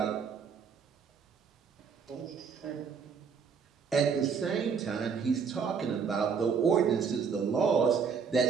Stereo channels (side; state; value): left; quieter; 6.1 dB